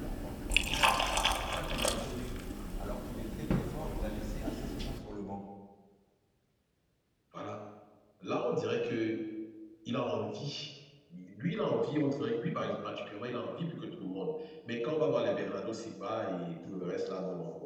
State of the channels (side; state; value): both; identical; correlation 1.00